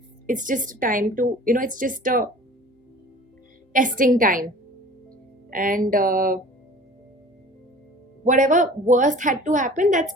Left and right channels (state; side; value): normal; both; correlation 0.44